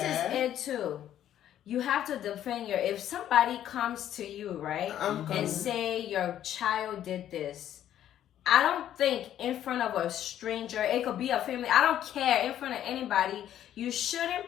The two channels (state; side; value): quieter; right; 11.2 dB